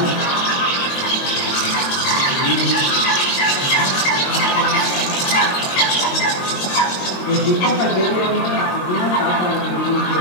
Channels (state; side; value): late; right; 22 ms